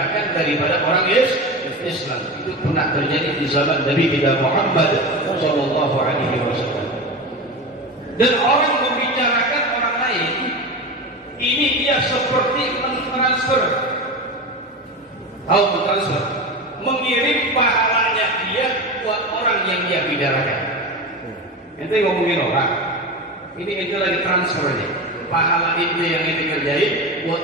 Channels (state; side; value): normal; both; correlation 0.25